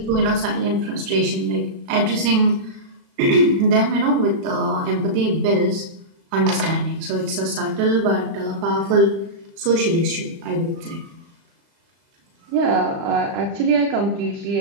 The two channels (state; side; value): late; left; 35 ms